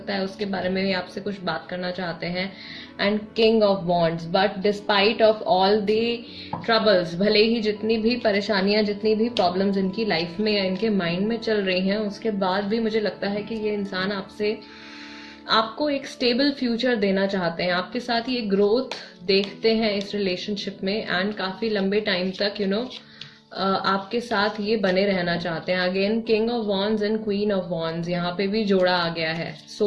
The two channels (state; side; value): identical; both; correlation 1.00